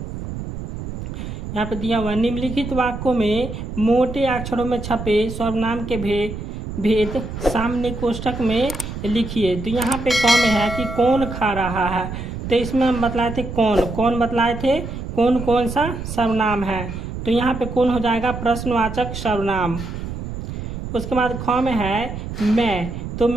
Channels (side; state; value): right; noise; rumble, 7 dB below the sound